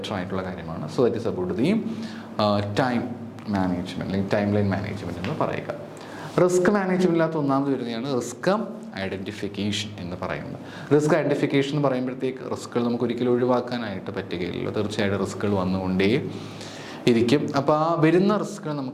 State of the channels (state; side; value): identical; both; correlation 1.00